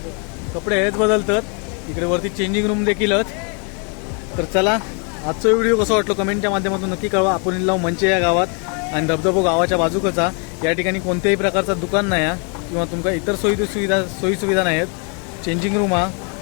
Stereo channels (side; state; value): right; quieter; 37.2 dB